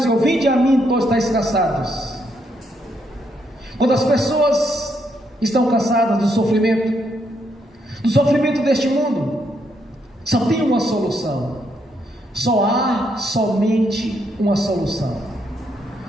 vinde a mim, todos estáis cansados. Quando as pessoas estão cansadas do sofrimento deste mundo, só tem uma solução. Só há somente uma solução.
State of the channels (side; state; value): both; normal; correlation 0.76